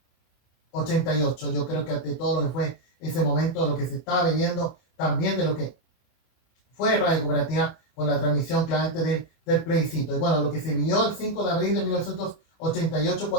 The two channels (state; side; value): late; right; 24 ms